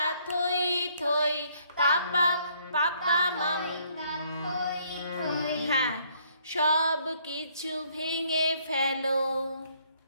থই, পাপা পাপা মামা, তাথই থই, হ্যাঁ, সব কিছু ভেঙে ফেলো,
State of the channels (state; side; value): inverted; both; correlation -0.66